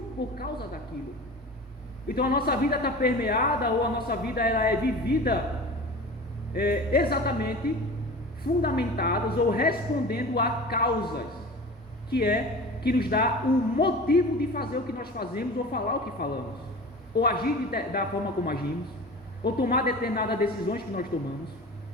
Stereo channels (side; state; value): both; normal; correlation 0.36